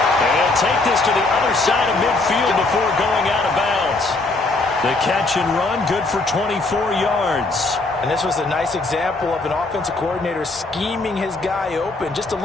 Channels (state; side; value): quieter; right; 3.3 dB